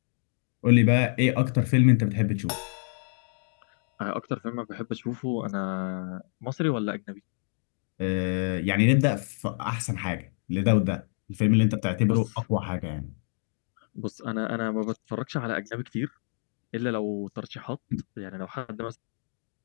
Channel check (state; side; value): silent; right; digital silence